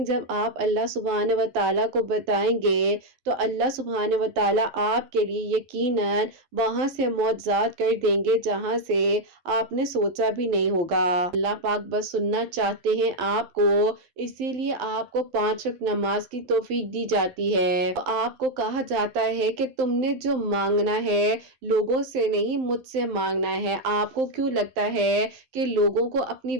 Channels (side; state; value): left; late; 11 ms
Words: جب آپ اللہ سبحانہ و تعالیٰ کو بتائیں گے تو اللہ سبحانہ و تعالیٰ آپ کے لیے یقیناً وہاں سے معجزات کر دیں گے جہاں سے آپ نے سوچا بھی نہیں ہوگا۔ اللہ پاک بس سننا چاہتے ہیں آپ کو، اسی لیے آپ کو 5 وقت نماز کی توفیق دی جاتی ہے۔ آپ کو کہا جاتا ہے کہ تم نے جو مانگنا ہے لوگوں سے نہیں مجھ سے مانگنا ہے۔ آپ کو کیوں لگتا ہے کہ لوگوں کو اپنی